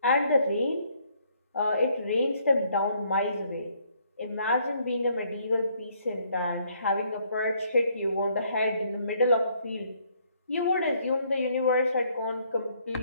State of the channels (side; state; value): both; inverted; correlation -0.67